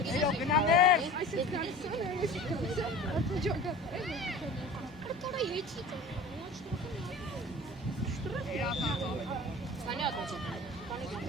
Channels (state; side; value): normal; both; correlation 0.39